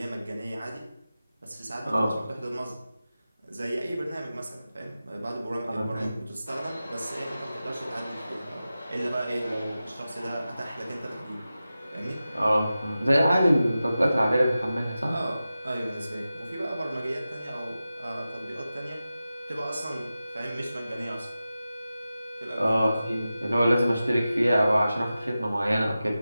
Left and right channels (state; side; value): inverted; both; correlation -0.94